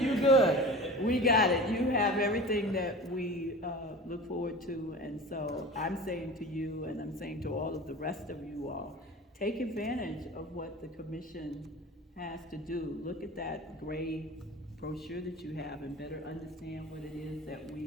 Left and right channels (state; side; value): normal; both; correlation 0.35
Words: good. We got it. You have everything that we look forward to. And so I'm saying to you, and I'm saying to all of the rest of you all, take advantage of what the commission has to do. Look at that gray brochure that you have and better understand what it is that